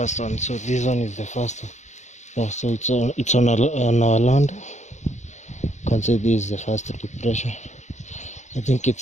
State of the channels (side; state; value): right; late; 0.34 ms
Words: one. So this one is the first one. Yeah, so on our land. You can see this is the first depression. I think